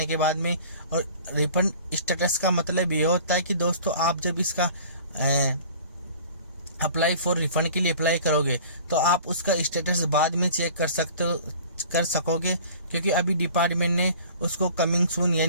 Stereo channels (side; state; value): both; inverted; correlation -0.46